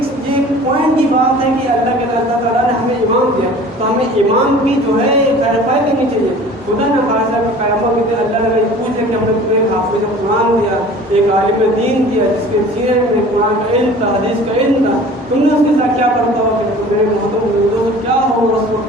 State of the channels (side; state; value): both; normal; correlation 0.45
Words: پوائنٹ کی بات ہے کہ اللہ تعالیٰ نے ہمیں امام دیا، تو ہمیں امام کی جو ہے خیر خواہی کرنی چاہیے۔ خدا نہ خاصا کہ قیامت کے دن اللہ نے پوچھ لے کہ ہم نے تمہیں حافظ قرآن دیا، ایک عالم دین دیا جس کے سینے میں قرآن کا علم تھا، حدیث کا علم تھا، تم نے اس کے ساتھ کیا کرتا ہو؟ تو میرے محمد کیا ہوگا اس